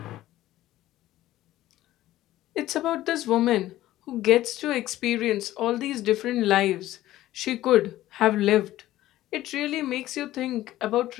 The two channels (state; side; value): quieter; right; 14.9 dB